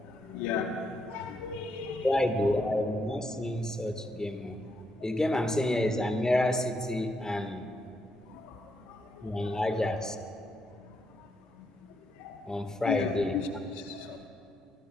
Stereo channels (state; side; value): normal; both; correlation 0.78